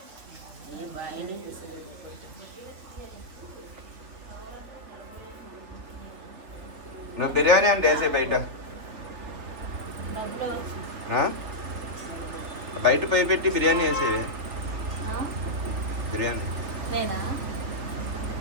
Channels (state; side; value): late; left; 3.3 ms